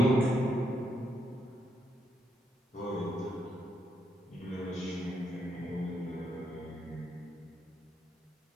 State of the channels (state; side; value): normal; both; correlation 0.78